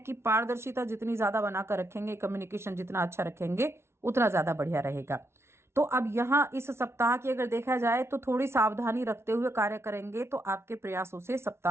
पारदर्शिता जितनी ज्यादा बनाकर रखेंगे, कम्युनिकेशन जितना अच्छा रखेंगे, उतना ज्यादा बढ़िया रहेगा। तो अब यहाँ इस सप्ताह की अगर देखा जाए तो थोड़ी सावधानी रखते हुए कार्य करेंगे तो आपके प्रयासों से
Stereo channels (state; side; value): late; left; 0.12 ms